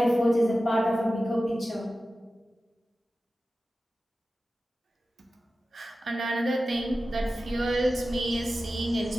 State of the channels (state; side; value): normal; both; correlation 0.94